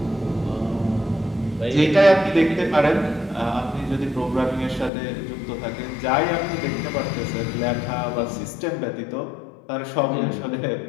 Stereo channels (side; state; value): right; drops out; at 4.9 s